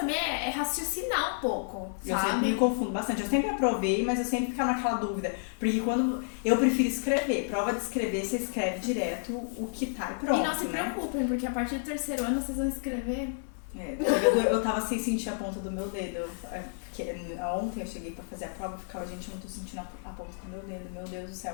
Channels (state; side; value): silent; right; digital silence